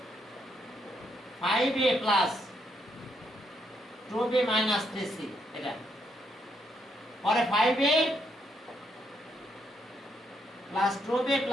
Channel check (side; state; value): both; normal; correlation 0.76